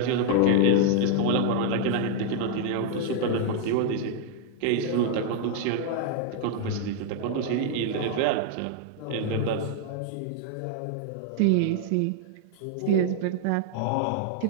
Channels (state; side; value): different; both; correlation 0.00